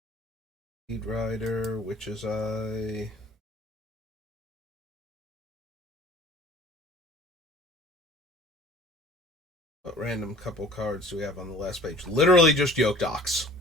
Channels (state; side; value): normal; both; correlation 0.49